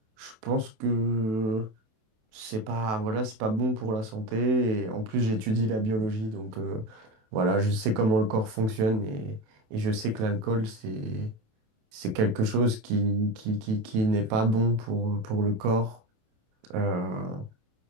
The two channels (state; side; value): late; left; 27 ms